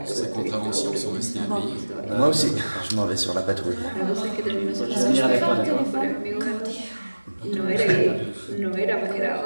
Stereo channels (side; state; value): both; inverted; correlation -1.00